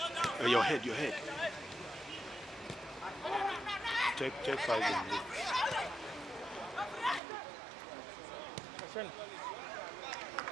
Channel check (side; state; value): left; drops out; at 7.2 s